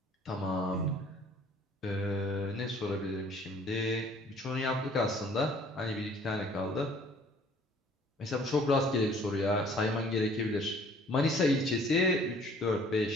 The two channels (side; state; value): both; normal; correlation 0.55